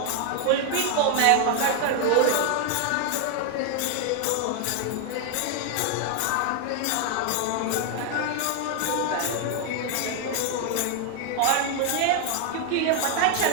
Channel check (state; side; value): different; both; correlation 0.00